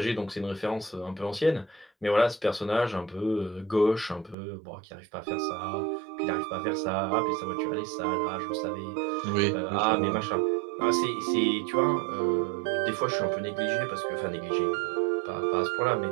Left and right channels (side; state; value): left; drops out; at 4.4 s